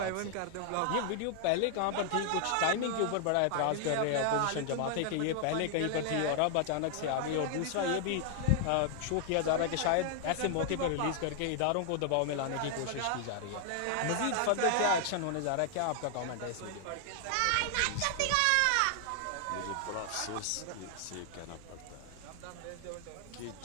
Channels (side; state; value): both; different; correlation 0.00